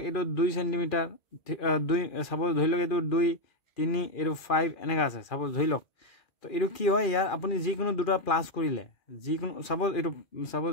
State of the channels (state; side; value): late; right; 2.4 ms